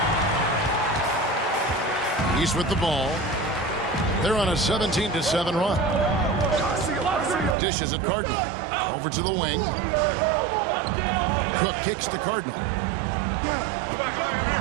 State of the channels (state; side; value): drops out; left; at 7.6 s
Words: He's with the ball. They're on a 17-7 run. Dishes at Cardinal. Over to the wing. Cook kicks to Cardinal.